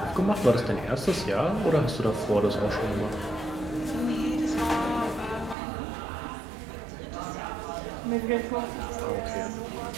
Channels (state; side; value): drops out; left; at 5.6 s